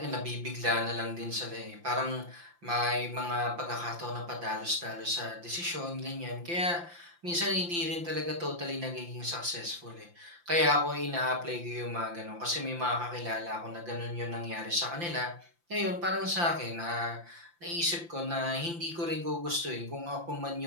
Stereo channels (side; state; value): left; late; 5.8 ms